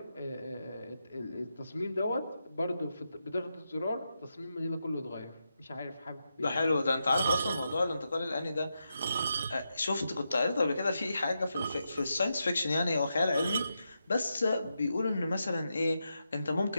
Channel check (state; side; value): inverted; both; correlation -0.86